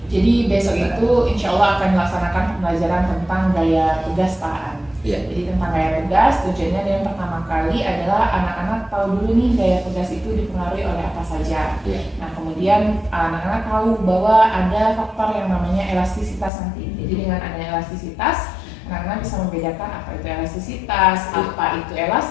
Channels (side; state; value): right; drops out; at 16.5 s